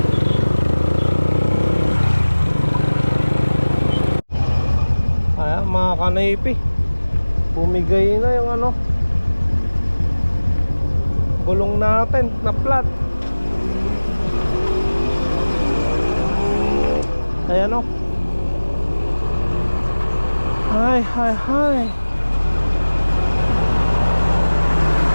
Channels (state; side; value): inverted; both; correlation -1.00